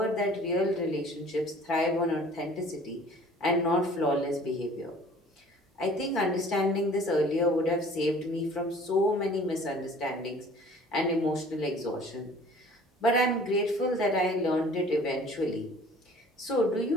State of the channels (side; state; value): both; normal; correlation 0.50